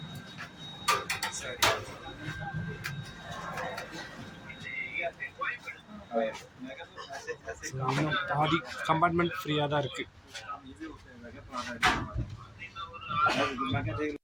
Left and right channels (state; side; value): identical; both; correlation 1.00